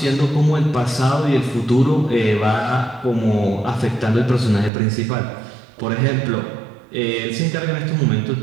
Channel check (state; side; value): drops out; left; at 4.7 s